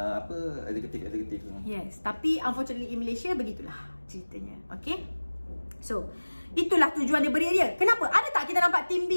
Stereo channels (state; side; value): inverted; both; correlation -1.00